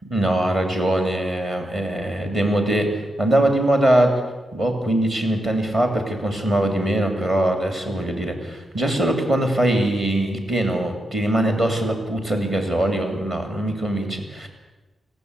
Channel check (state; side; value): normal; both; correlation 0.84